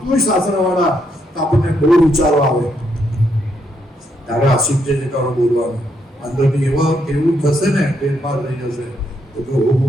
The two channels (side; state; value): both; normal; correlation 0.76